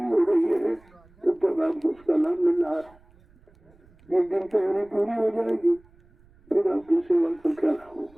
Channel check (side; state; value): right; noise; rumble, 29 dB below the sound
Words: हो रही है तब तक आपको उसका लाभ मिल रहा है। जिस दिन तैयारी पूरी हो जाएगी फिर आपकी सेवा का क्या लाभ